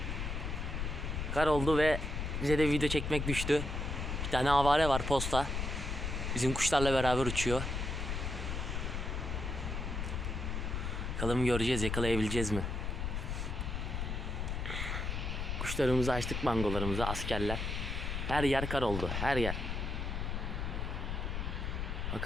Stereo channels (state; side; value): noise; left; rumble, 2 dB below the sound